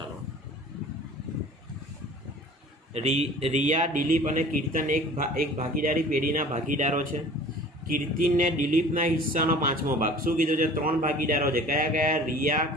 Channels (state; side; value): normal; both; correlation 0.45